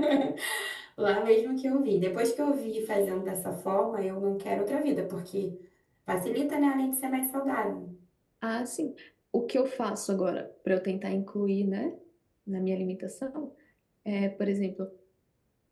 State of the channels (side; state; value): both; identical; correlation 1.00